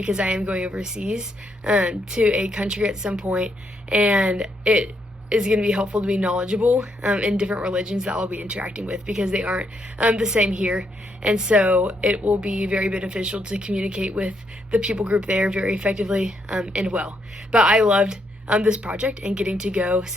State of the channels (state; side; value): normal; both; correlation 0.76